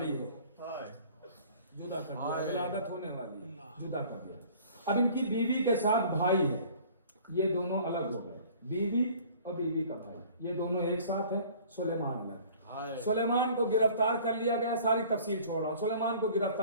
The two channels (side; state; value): both; inverted; correlation -0.49